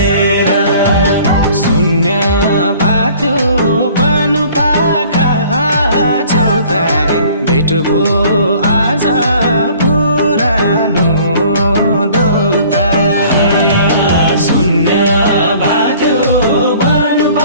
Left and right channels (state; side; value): inverted; both; correlation -0.52